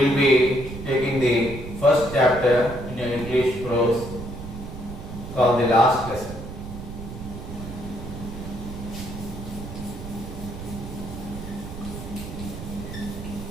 be taking the first chapter in your English prose called The Last Lesson.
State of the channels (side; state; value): right; noise; rumble, 10 dB below the sound